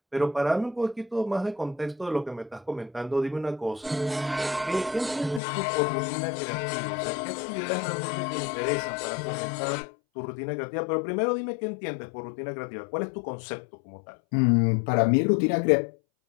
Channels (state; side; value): drops out; right; at 5.4 s